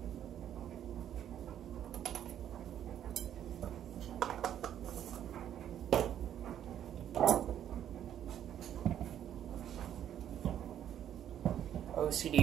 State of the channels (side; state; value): left; quieter; 10.4 dB